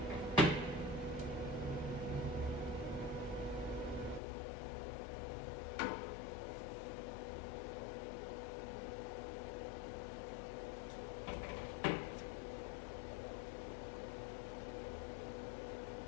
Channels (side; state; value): right; drops out; at 4.2 s